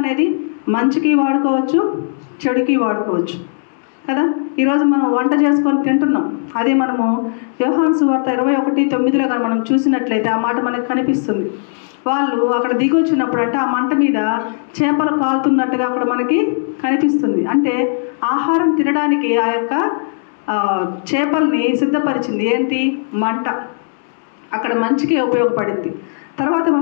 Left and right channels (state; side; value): silent; right; digital silence